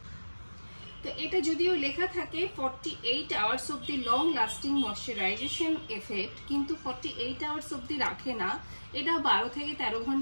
তো এটা যদিও লেখা থাকে 48 hours of the long lasting moisturisation effect, কিন্তু 48 আওয়ার্স অব্দি রাখে না, এটা 12 থেকে 13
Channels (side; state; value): both; inverted; correlation -1.00